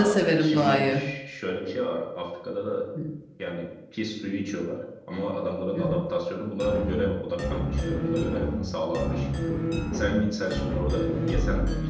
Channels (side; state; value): both; identical; correlation 1.00